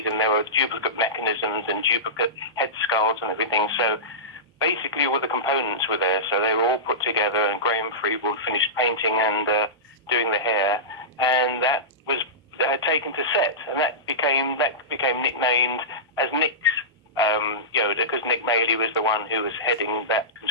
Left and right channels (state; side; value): normal; both; correlation -0.17